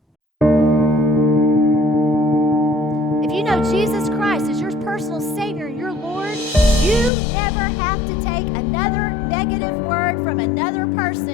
If you know Jesus Christ as your personal Savior and your Lord, you never have to take another negative word from another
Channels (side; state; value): right; drops out; at 7.1 s